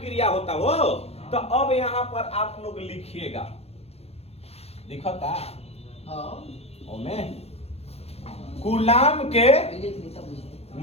होता हो। तो अब यहाँ पर आप लोग लिखिएगा, दिखता कुलाम के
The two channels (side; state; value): right; late; 0.29 ms